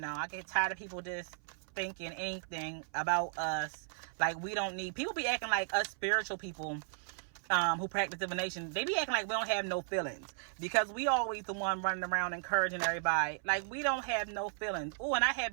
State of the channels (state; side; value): silent; left; 54 dB below the other